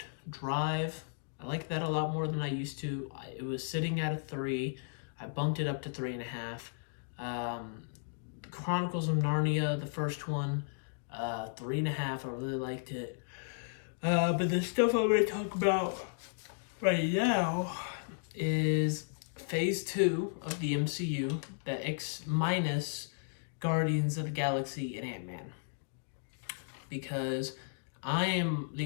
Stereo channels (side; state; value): right; silent; digital silence